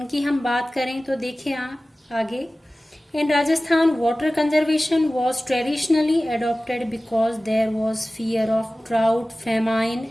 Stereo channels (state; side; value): normal; both; correlation 0.97